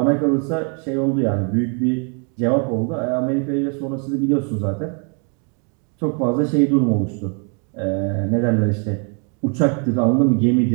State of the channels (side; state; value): left; quieter; 39.0 dB